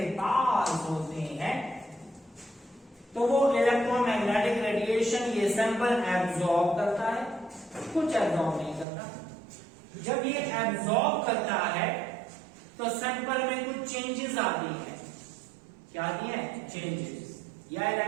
पास होते हैं तो वो इलेक्ट्रोमैग्नेटिक रेडिएशन ये सैंपल एब्जॉर्ब करता है, कुछ एब्जॉर्ब नहीं करता। जब ये एब्जॉर्ब करता है तो सैंपल में कुछ चेंजेस आती है। क्या आती है? चेंजेस। या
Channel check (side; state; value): left; drops out; at 8.8 s